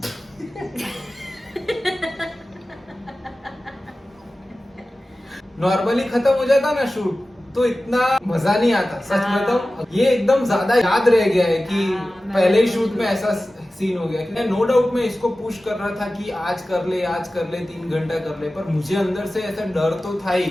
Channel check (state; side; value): normal; both; correlation 0.96